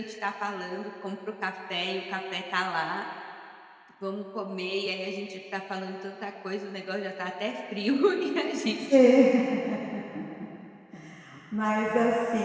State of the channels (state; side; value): identical; both; correlation 1.00